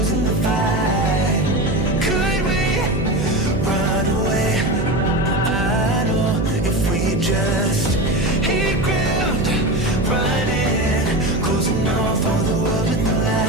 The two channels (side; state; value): right; noise; hum, 3 dB below the sound